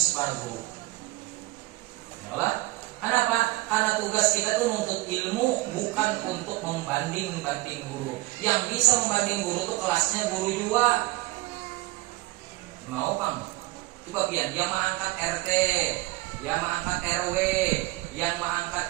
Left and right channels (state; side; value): quieter; left; 20.1 dB